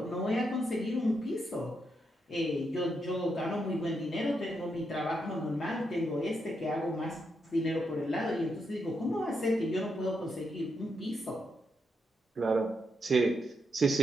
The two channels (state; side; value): normal; both; correlation 0.82